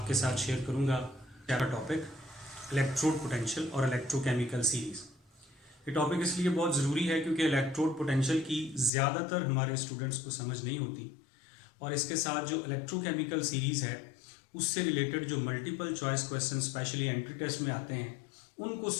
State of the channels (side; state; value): right; drops out; at 8.9 s